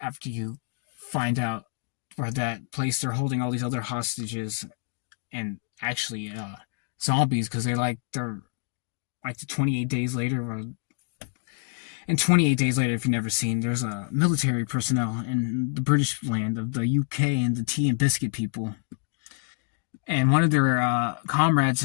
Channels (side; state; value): right; silent; digital silence